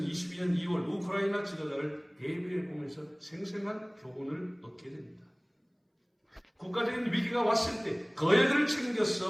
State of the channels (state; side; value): identical; both; correlation 1.00